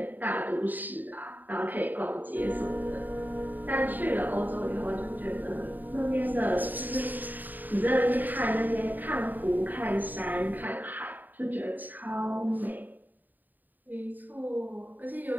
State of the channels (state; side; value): late; left; 0.087 ms